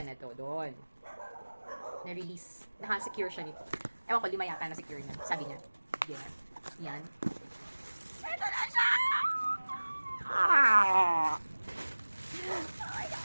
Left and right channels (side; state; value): both; inverted; correlation -1.00